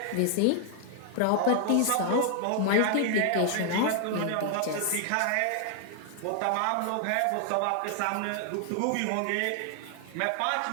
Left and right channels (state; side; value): different; both; correlation 0.00